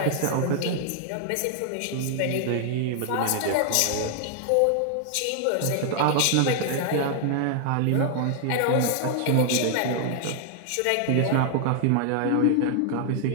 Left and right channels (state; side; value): different; both; correlation 0.00